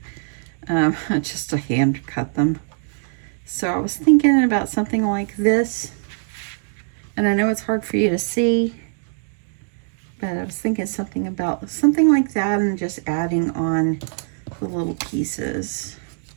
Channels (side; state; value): left; silent; digital silence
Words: hand cut them. So I was thinking about something like this, and I know it's hard for you to see, but I was thinking something like that and just adding on the little pieces.